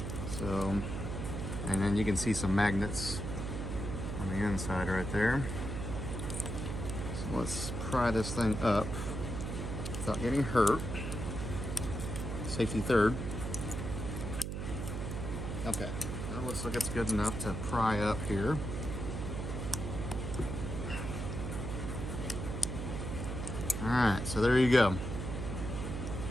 So, and then you can see some magnets on the inside right there. So let's pry this thing up without getting hurt. Safety third. Okay, now looks like it's good enough to pry up here. Alright, so there you go.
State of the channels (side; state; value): right; noise; hum, 4 dB below the sound